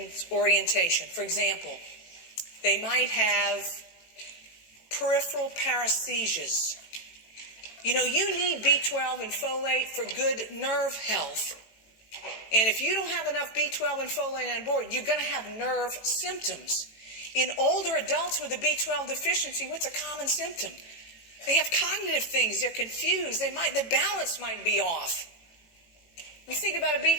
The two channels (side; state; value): right; late; 18 ms